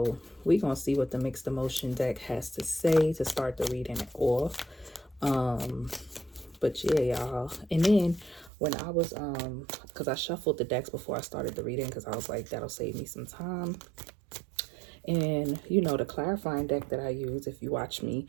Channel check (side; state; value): left; drops out; at 8.5 s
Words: we gonna see what the mixed emotion deck has to say to start the reading off. But yeah, y'all. And then when I was because I shuffled the decks before I started the reading, because I was like, that'll save me some time. And the clarifying deck that I use, if you watch me,